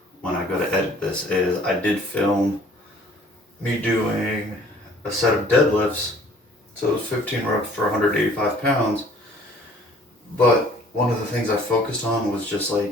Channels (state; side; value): normal; both; correlation 0.55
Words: when I go to edit this is I did film me doing a set of deadlifts, so it was 15 reps for 185 pounds, but one of the things I focused on was just